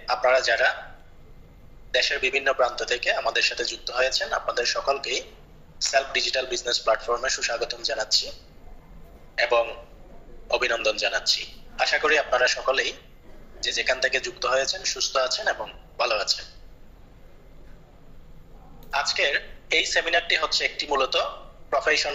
আপনারা যারা দেশের বিভিন্ন প্রান্ত থেকে আমাদের সাথে যুক্ত হয়েছেন, আপনাদের সকলকেই সেলফ ডিজিটাল বিজনেস প্ল্যাটফর্মে সুস্বাগতম জানাচ্ছি এবং অভিনন্দন জানাচ্ছি। আশা করি আপনারা সকলেই যে যেখান থেকে যুক্ত হয়েছেন সুস্থ আছেন এবং ভালো আছেন। আজকের এই সেমিনারটি হচ্ছে একটি মূলত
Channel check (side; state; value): both; identical; correlation 1.00